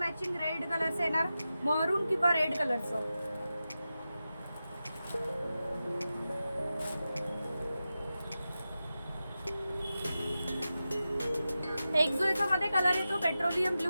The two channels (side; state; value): both; inverted; correlation -0.92